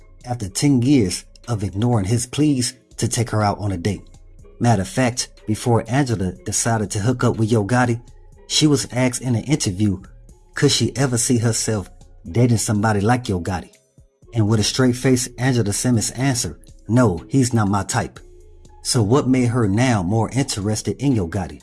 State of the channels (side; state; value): both; identical; correlation 1.00